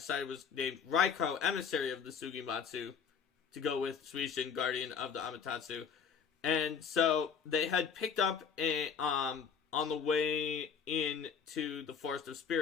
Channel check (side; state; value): right; quieter; 6.6 dB